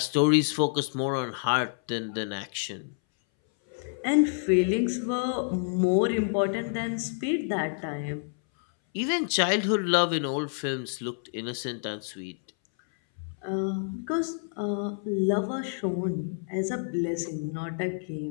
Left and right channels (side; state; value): right; silent; 59 dB below the other